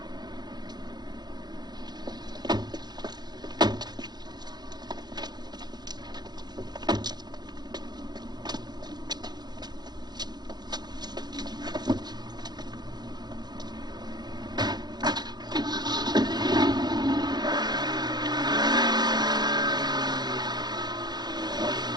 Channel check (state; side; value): late; left; 0.20 ms